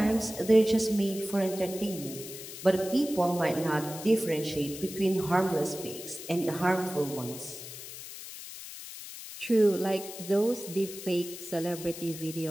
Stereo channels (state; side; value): noise; left; hiss, 12 dB below the sound